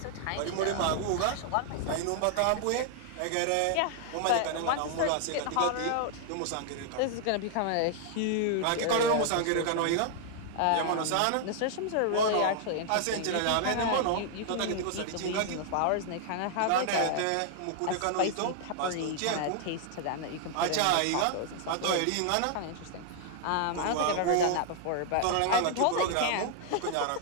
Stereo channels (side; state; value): both; different; correlation -0.01